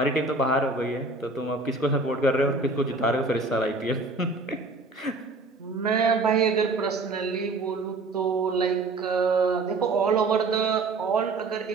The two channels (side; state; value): left; quieter; 3.4 dB